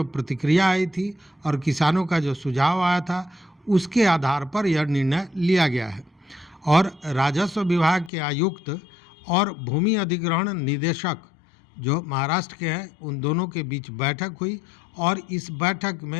प्रतिक्रिया आई थी और किसानों का जो सुझाव आया था, उसके आधार पर यह निर्णय लिया गया है। और राजस्व विभाग के आयुक्त और भूमि अधिग्रहण निदेशक जो महाराष्ट्र के हैं, उन दोनों के बीच बैठक हुई, और इस बैठक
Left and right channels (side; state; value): right; drops out; at 8.1 s